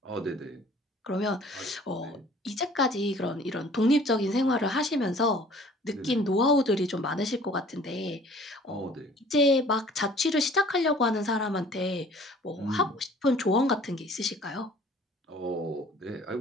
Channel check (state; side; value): normal; both; correlation 0.52